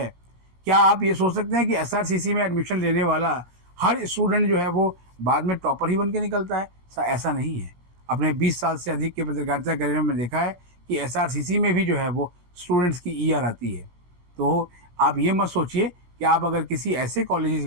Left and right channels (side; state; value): left; late; 17 ms